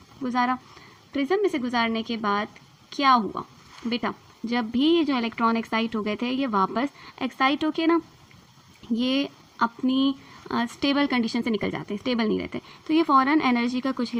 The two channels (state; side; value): identical; both; correlation 1.00